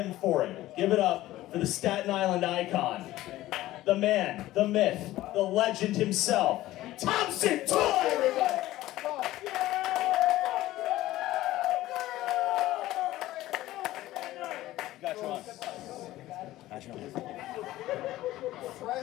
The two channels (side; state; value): right; quieter; 15.8 dB